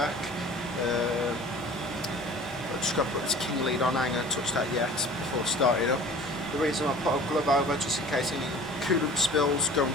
I've just got to put this king lead on, I ain't going to touch that yet before starting up. The reason I put a glove over, just in case any coolant spills go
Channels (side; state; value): both; normal; correlation 0.45